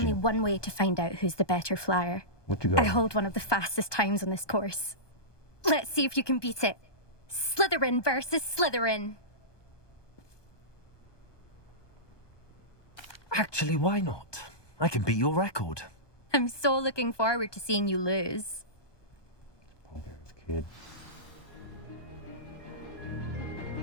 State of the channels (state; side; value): late; right; 1.2 ms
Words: one way to find out who's the better flyer. What you got? I hold one of the fastest times on this course. Let's see if you can beat it. Slytherin versus Slytherin. Actually, why not? I can beat your record. I'm so looking forward to seeing you lose. Okay, this kid.